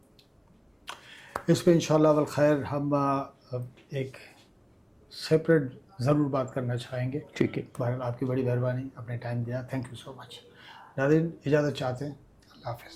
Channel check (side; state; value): both; identical; correlation 1.00